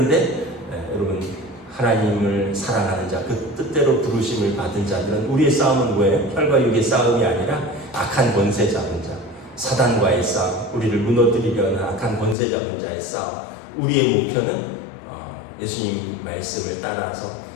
여러분 하나님을 사랑하는 자, 그 뜻대로 부르심을 받은 자들은 우리의 싸움은 뭐예요? 혈과 육의 싸움이 아니라 악한 권세 잡은 자, 사단과의 싸움, 우리를 무너뜨리려는 악한 권세 잡은 자의 싸움. 우리의 목표는 예수님 말씀을 따라서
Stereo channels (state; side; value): drops out; right; at 12.4 s